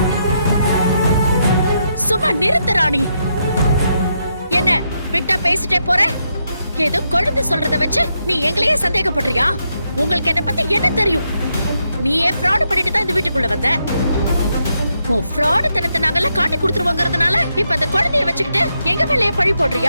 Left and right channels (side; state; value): both; inverted; correlation -0.80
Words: சும்மா நிறுத்து ராணி. என்ன விட்டா பேசிட்டே போற? ஏதோ குழந்தை சொல்றத வச்சு நீ எங்களையே சந்தேகப்படுறியா? உங்களுக்கு என்ன பத்தி என்ன தெரியும்? நீயே ஃப்ராட் பண்ணிட்டு தான் இந்த வீட்டுக்குள்ள வந்த. உன் ஃப்ராட் தனத்தை நாங்கெல்லாம் காட்டி கொடுத்துருவோங்கிறதுனால இப்ப அந்த குழந்தைய வச்சுக்கிட்டு எங்க மேலேயே பழி